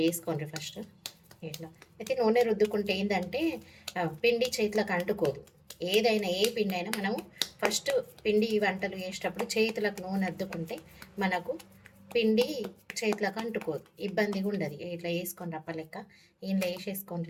వేసుకోండి ఫస్ట్. ఇట్లా అయితే నూనె రుద్దుకుంటే ఏంటంటే పిండి చేతులకు అంటుకోదు. ఏదైనా ఏ పిండి అయినా మనము ఫస్ట్ పిండి వంటలు చేసేటప్పుడు చేతులకు నూనె అద్దుకుంటే మనకు పిండి చేతులకు అంటుకోదు, ఇబ్బందిగా ఉండదు. ఇట్లా వేసుకొని రప్పలెక్క ఇంట్లో వేసేసుకొని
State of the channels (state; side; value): identical; both; correlation 1.00